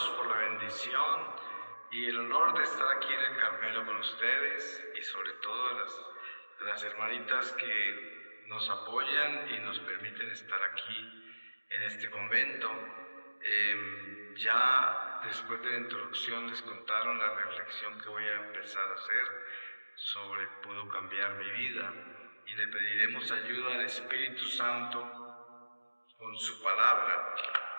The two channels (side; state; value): both; inverted; correlation -1.00